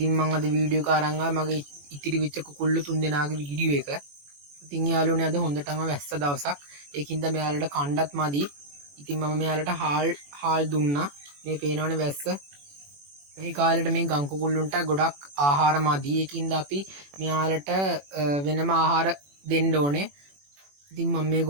මම අද වීඩියෝ එක අරන් ආවා මගේ ඉතිරි වෙච්ච කුකුල්ලු තුන්දෙනාගේ වීඩියෝ එක. ඉතින් යාළුවනේ අද හොඳටම වැස්ස දවසක්. ඒකින්ද මෙයාලට කණ්ඩත් මදි. ඉතින් මම මෙයාලට හාල් දුන්නා. මේ පේනවනේ වැස්ස. මේ කාලේට මේ ගම් කුකුල්ලුන්ට ගොඩක් ආහාර මදි. ඒකින්ද අපි මෙයාලට වෙනම ආහාර දෙන්න ඕනේ. ඉතින් මම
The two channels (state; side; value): late; left; 21 ms